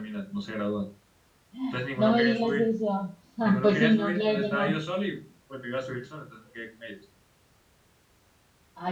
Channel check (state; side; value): identical; both; correlation 1.00